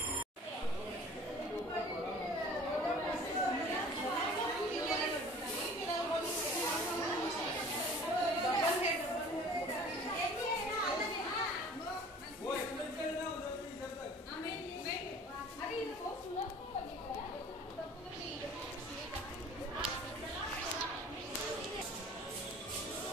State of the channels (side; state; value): both; normal; correlation 0.47